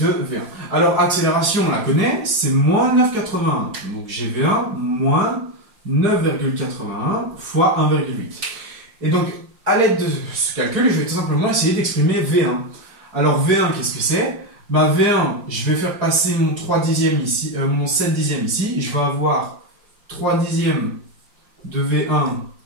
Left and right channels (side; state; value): left; late; 5.0 ms